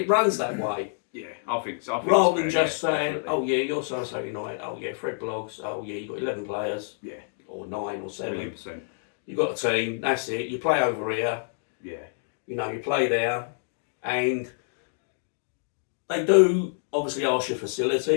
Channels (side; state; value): right; silent; digital silence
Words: runs that way. Yeah, I think so. Rather than just saying, definitely. Oh yeah, you're so United. Oh yeah, Fred Blogs. Oh yeah, you've got 11 players. Yeah. Or 9 or 7. 100%. You've got a team. That's it. You play over here. Yeah. You play there, and they do obviously ask you